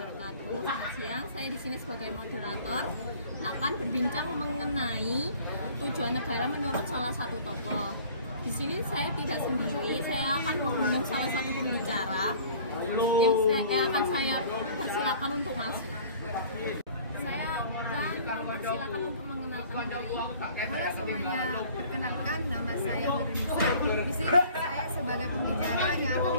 Selamat siang. Saya di sini sebagai moderator akan berbincang mengenai tujuan negara menurut salah satu tokoh. Di sini saya tidak sendiri. Saya akan mengundang salah satu pembicara yang akan saya persilakan untuk masuk. Saya akan mempersilakan untuk mengenalkan diri. Halo semuanya, perkenalkan nama saya Nurunisa. Di sini saya sebagai pembicara yang akan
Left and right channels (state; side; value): inverted; both; correlation -0.49